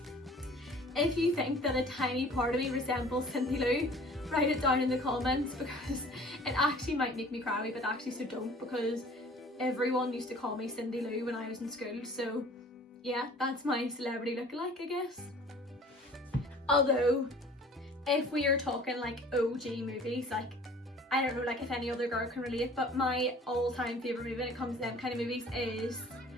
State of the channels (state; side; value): normal; both; correlation 0.49